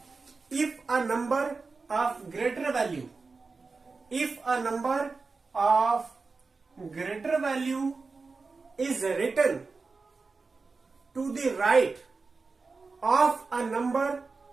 if a number of greater value, if a number of greater value is written to the right of a number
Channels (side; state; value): left; quieter; 4.2 dB